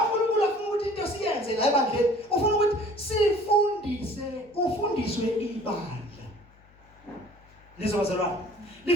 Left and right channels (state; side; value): noise; left; hum, 30 dB below the sound